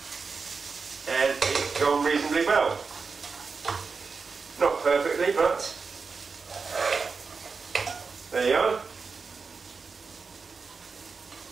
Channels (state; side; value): quieter; left; 4.9 dB